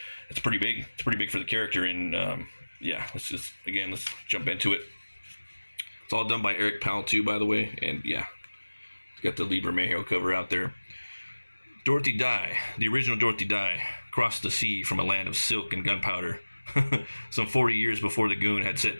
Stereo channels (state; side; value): inverted; both; correlation -1.00